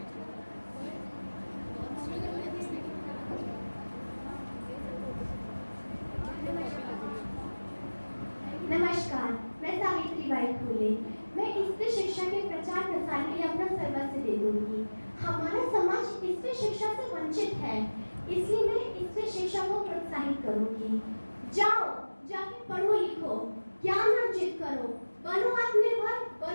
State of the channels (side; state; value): both; inverted; correlation -1.00